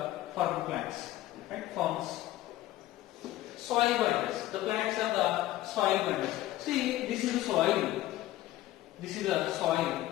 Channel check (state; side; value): quieter; right; 15.3 dB